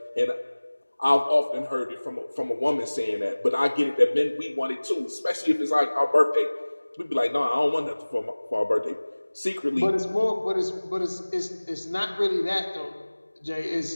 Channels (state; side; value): inverted; both; correlation -1.00